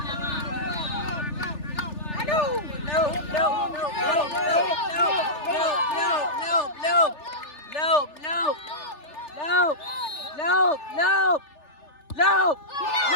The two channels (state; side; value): late; right; 3.4 ms